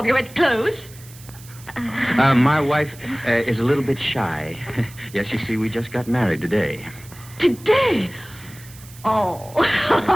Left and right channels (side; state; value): right; noise; hiss, 20 dB below the sound